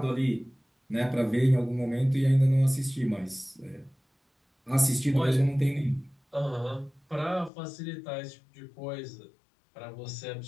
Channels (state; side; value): drops out; right; at 7.5 s